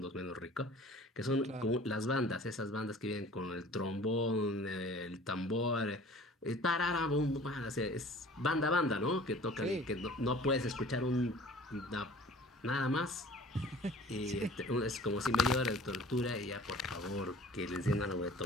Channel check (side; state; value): both; normal; correlation 0.47